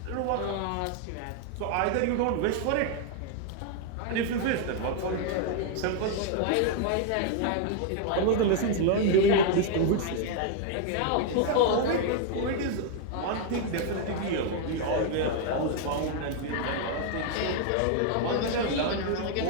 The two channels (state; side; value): different; both; correlation 0.00